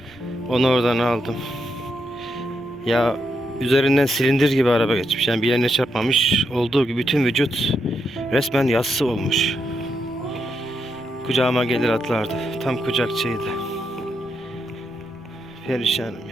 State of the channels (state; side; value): noise; right; rumble, 27 dB below the sound